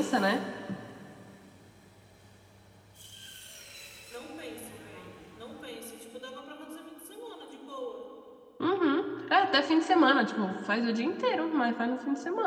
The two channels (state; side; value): identical; both; correlation 1.00